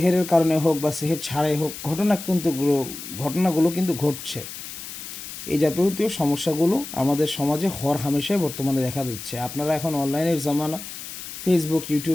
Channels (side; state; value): left; noise; hiss, 11 dB below the sound